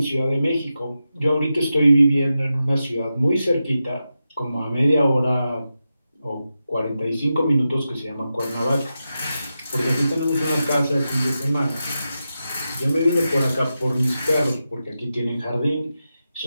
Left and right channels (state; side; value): inverted; both; correlation -0.90